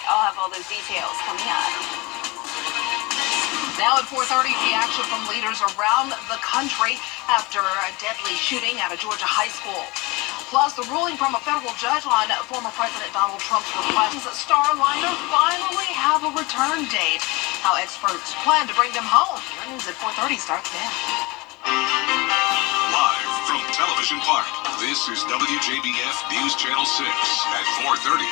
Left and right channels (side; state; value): right; quieter; 24.1 dB